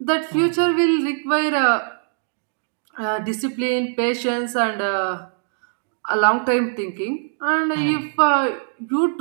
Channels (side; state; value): left; silent; digital silence